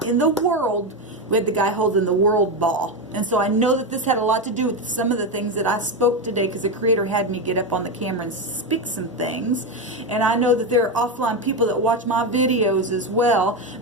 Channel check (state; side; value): normal; both; correlation 0.12